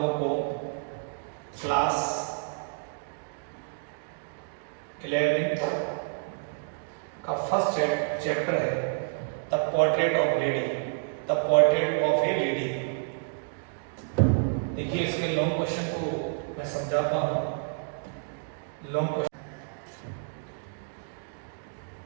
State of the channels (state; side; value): silent; left; digital silence